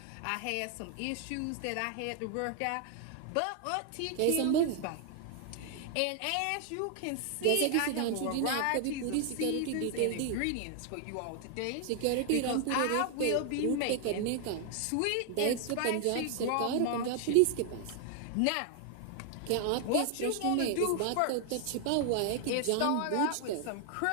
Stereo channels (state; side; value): different; both; correlation 0.00